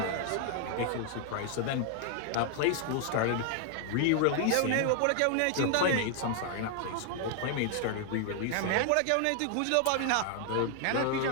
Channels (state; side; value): different; both; correlation 0.00